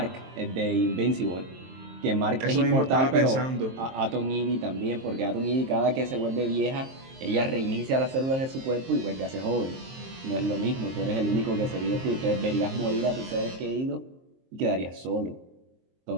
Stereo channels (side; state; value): left; late; 23 ms